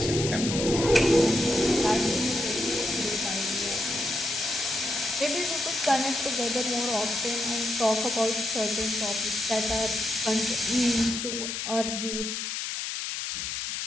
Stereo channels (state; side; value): noise; left; hiss, 3 dB below the sound